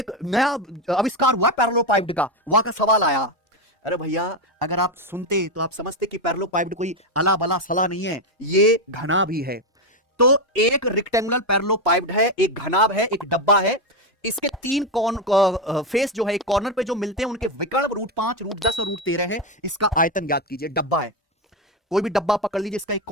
नया आविष्कार हुआ पैरेललोपाइप्ड का, वहां का सवाल आया। अरे भैया अगर आप सुनते तो आप समझते कि पैरेललोपाइप्ड कोई अला बला सला नहीं है, ये घना भी है। तो एक रेक्टेंगुलर पैरेललोपाइप्ड है, एक घनाभ है, एक डब्बा है। इसके तीन फेस जो है एक कॉर्नर पे जो मिलते हैं उनके विकर्ण √5, √10 और √13 है। इसका आयतन ज्ञात कीजिए। डब्बा है, कोई भी डब्बा पकड़ लीजिए, इसका एक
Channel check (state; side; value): normal; both; correlation 0.09